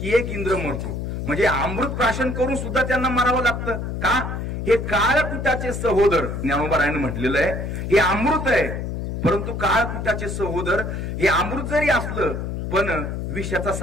की एक इंद्र मरतो. म्हणजे अमृत प्राशन करून सुद्धा त्यांना मारावं लागतं का? हे काळकुटाचे सहोदर, ज्ञानोबारायनं म्हटलेलं आहे, हे अमृत आहे. परंतु काळकुटाचे सहोदर, हे अमृत जरी असलं पण विषाचा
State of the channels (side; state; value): left; noise; hum, 4 dB below the sound